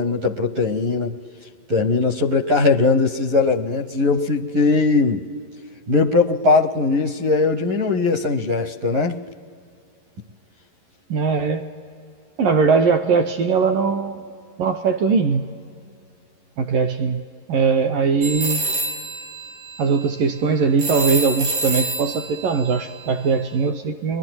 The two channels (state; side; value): late; left; 11 ms